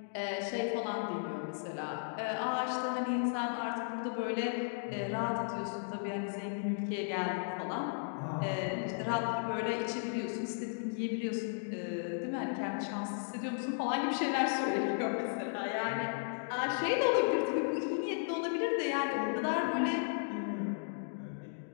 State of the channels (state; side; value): silent; right; digital silence